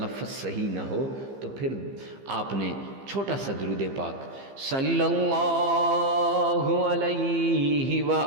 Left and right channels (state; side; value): late; left; 15 ms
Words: صحیح نہ ہو، تو پھر آپ نے چھوٹا سا درود پاک صلی اللہ علیہ